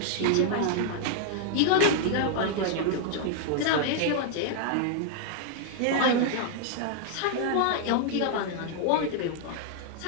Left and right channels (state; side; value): different; both; correlation 0.00